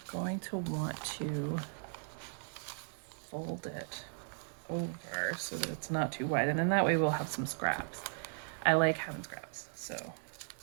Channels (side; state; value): left; silent; 53 dB below the other